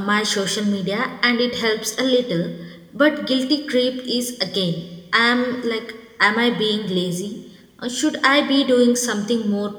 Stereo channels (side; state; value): both; identical; correlation 1.00